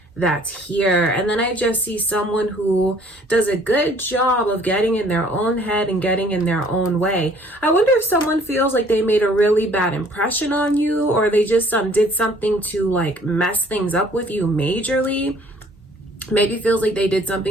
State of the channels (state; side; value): normal; both; correlation 0.57